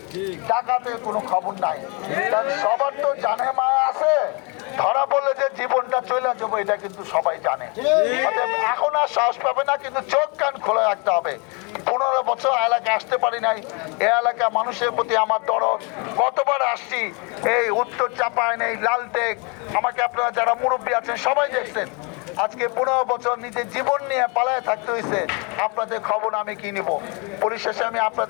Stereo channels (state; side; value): quieter; right; 32.4 dB